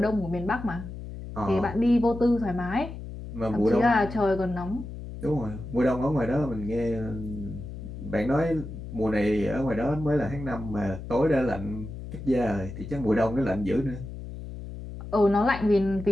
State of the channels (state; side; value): noise; left; hum, 10 dB below the sound